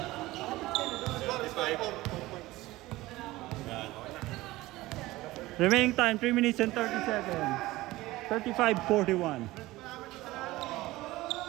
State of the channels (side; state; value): left; quieter; 18.4 dB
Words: Remaining time 3 minutes and 30 seconds. 35-41.